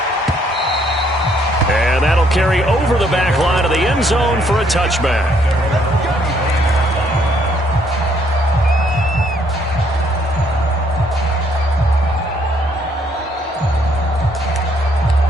And that'll carry over the back line of the end zone for a touchback.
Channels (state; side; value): normal; both; correlation 0.68